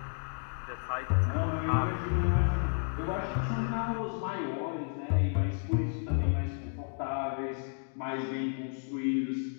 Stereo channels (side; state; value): right; silent; 56 dB below the other